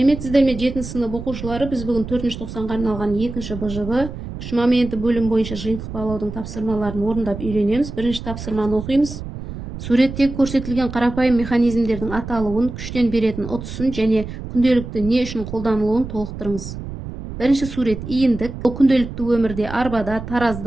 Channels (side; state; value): right; noise; rumble, 9 dB below the sound